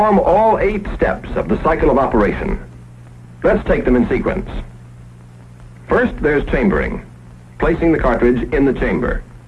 all 8 steps of the cycle of operation. Let's take them in sequence. First, there's chambering, placing the cartridge in the chamber.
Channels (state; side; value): identical; both; correlation 1.00